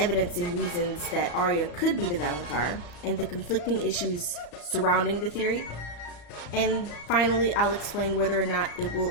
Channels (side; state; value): right; late; 34 ms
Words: and reasons that Arya could be the Valonqar, and the conflicting issues surrounding the theory. And finally, I'll explain whether or not it will